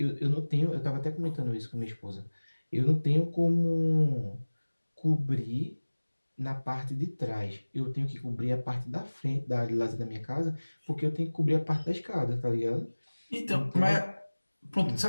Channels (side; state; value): both; inverted; correlation -1.00